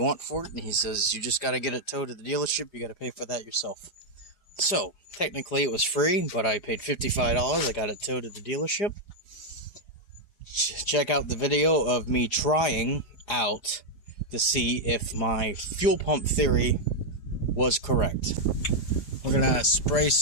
for it, and he says, you just got to get it towed to the dealership, you got to pay for that yourself. So, technically it was free, but I paid $55, I got it towed to the dealership. Check out the video of me trying out to see if my fuel pump theory was correct. We're gonna spray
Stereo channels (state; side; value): late; right; 4.9 ms